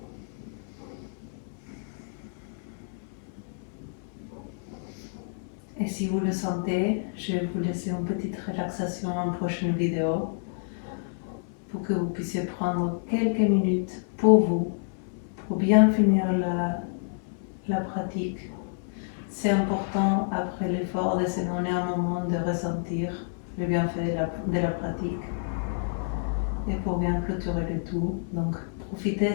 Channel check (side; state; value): right; silent; 59 dB below the other